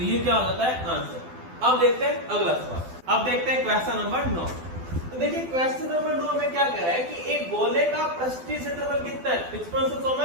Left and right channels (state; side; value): late; left; 12 ms